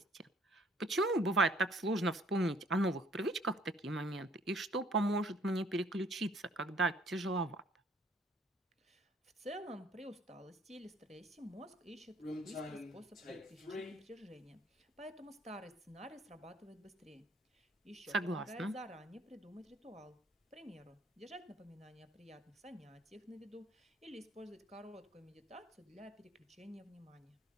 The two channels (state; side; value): normal; both; correlation 0.60